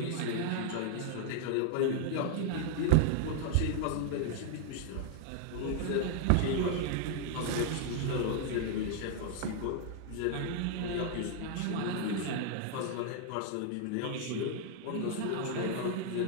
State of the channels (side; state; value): both; different; correlation 0.00